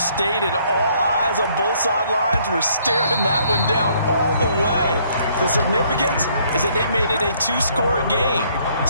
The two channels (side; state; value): both; inverted; correlation -0.65